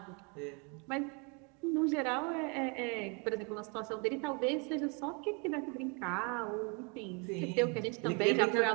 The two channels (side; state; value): left; quieter; 33.7 dB